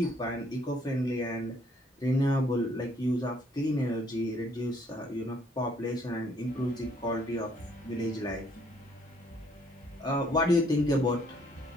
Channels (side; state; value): both; normal; correlation 0.65